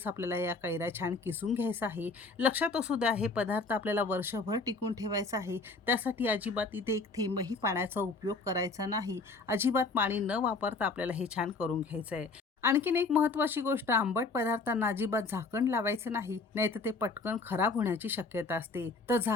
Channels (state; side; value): quieter; right; 3.9 dB